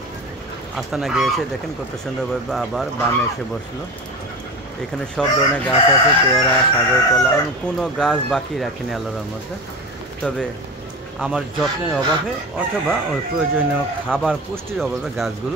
আস্তানা গিয়েছে, দেখেন কত সুন্দরভাবে আবার বামে এসে বসলো। এখানে সব ধরনের গাছ আছে, পেয়ারা, সাগর কলা, কোনো গাছ বাকি রাখিনি আল্লাহর মধ্যে। তবে আমার যত্নের অভাবে অথবা ওই প্রয়োজনীয় খাবার পুষ্টির অভাবে গাছগুলো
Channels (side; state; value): both; normal; correlation 0.28